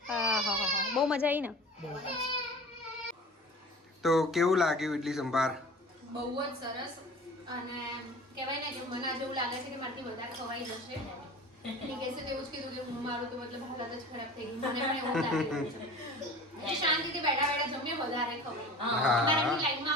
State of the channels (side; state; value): both; normal; correlation 0.40